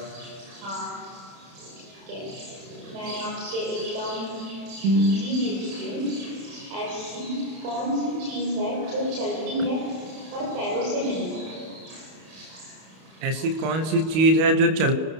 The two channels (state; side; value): late; left; 31 ms